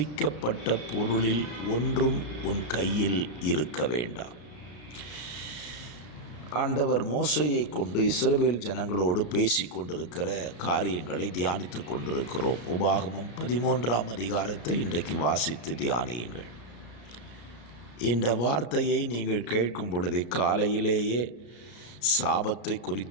பொருளில் ஒன்றும் உன் கையில் இருக்க வேண்டாம். ஆண்டவர் மோசேயை கொண்டு இஸ்ரவேல் ஜனங்களோடு பேசி கொண்டிருக்கிற காரியங்களை தியானித்து கொண்டிருக்கிறோம். உபாகமம் 13ஆம் அதிகாரத்தை இன்றைக்கு வாசித்து தியானியுங்கள். இந்த வார்த்தையை நீங்கள் கேட்கும் பொழுதே காலையிலேயே சாபத்தை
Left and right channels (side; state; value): right; late; 33 ms